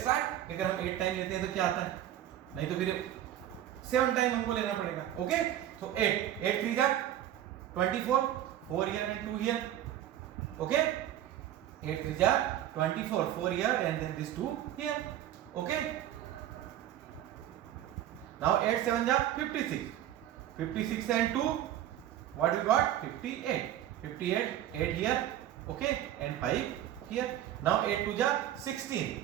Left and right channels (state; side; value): quieter; left; 12.0 dB